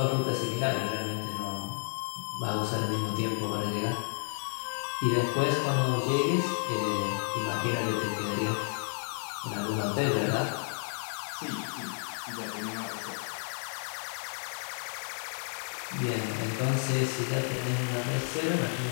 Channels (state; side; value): silent; right; digital silence